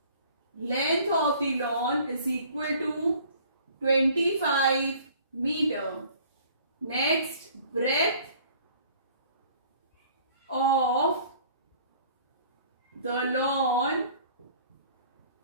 Length of the lawn is equal to 25 meter. Next, breadth of the lawn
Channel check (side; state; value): both; inverted; correlation -0.53